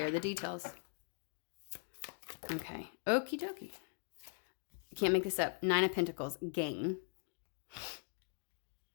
of the details. Okay. Okie dokie. Can't make this up. 9 of Pentacles, gain.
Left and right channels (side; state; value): right; silent; 51 dB below the other